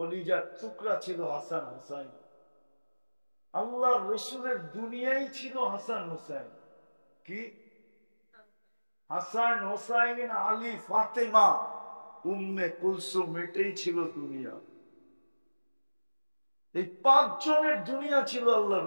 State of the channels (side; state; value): both; inverted; correlation -1.00